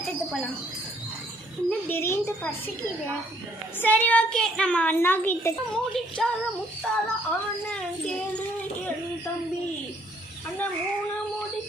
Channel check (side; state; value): both; normal; correlation 0.66